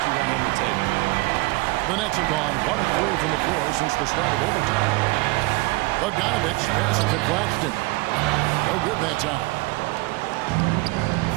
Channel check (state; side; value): quieter; left; 23.6 dB